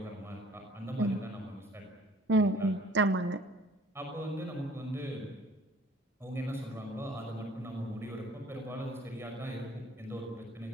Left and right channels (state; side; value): normal; both; correlation 0.53